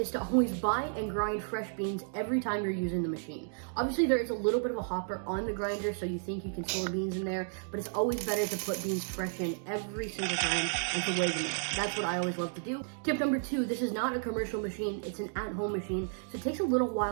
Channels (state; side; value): silent; left; digital silence